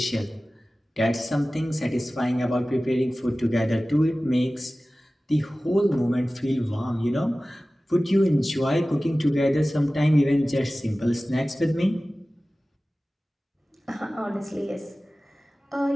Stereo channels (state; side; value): normal; both; correlation 0.97